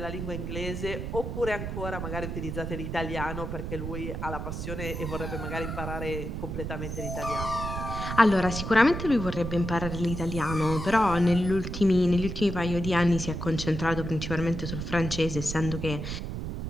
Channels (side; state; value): right; noise; rumble, 5 dB below the sound